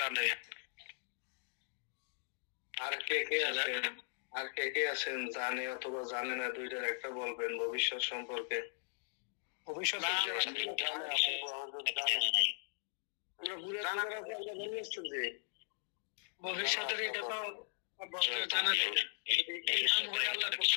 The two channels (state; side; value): silent; right; digital silence